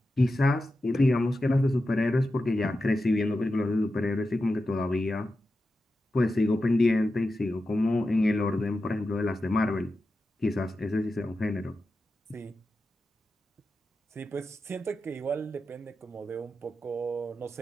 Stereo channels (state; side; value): normal; both; correlation 0.91